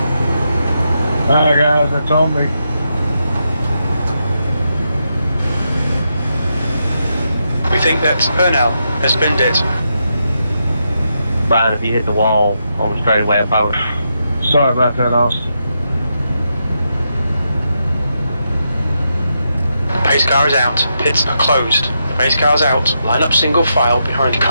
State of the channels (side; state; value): both; inverted; correlation -0.84